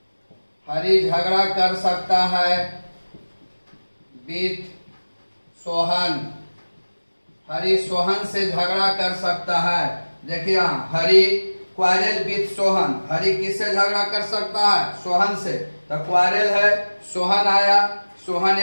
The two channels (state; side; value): inverted; both; correlation -1.00